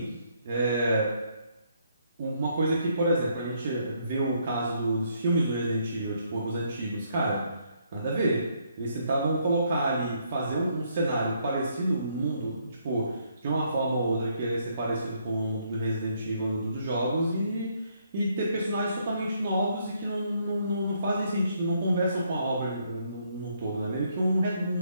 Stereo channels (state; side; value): inverted; both; correlation -0.71